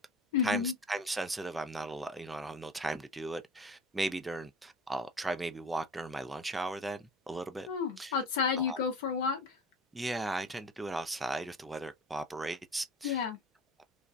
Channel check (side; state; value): both; normal; correlation 0.37